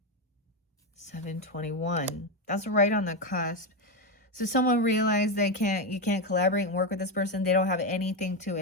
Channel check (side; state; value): both; normal; correlation 0.10